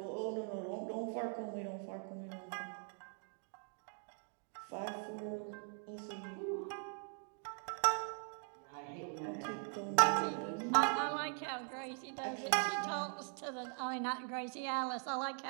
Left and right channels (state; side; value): silent; left; 50 dB below the other